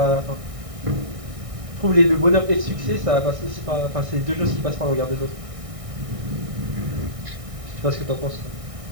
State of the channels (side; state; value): left; late; 1.6 ms